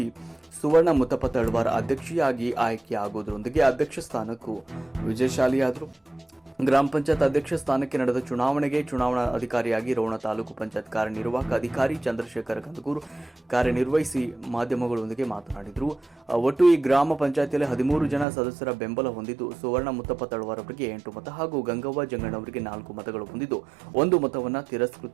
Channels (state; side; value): drops out; left; at 18.2 s